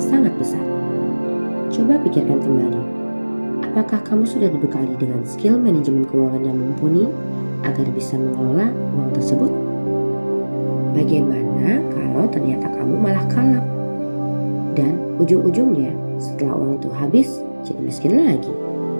sangat besar. Coba pikirkan kembali, apakah kamu sudah dibekali dengan skill manajemen keuangan yang mumpuni agar bisa mengelola uang tersebut? Bagaimana kalau ternyata kamu malah kalap? Dan ujung-ujungnya setelah uang itu habis jadi miskin lagi.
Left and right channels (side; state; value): both; inverted; correlation -1.00